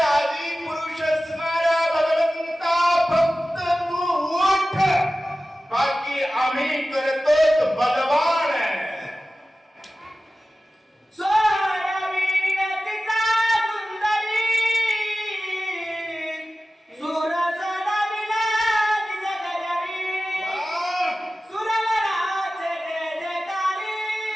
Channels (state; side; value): normal; both; correlation 0.96